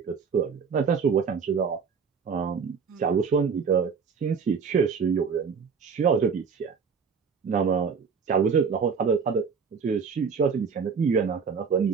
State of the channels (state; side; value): quieter; left; 6.0 dB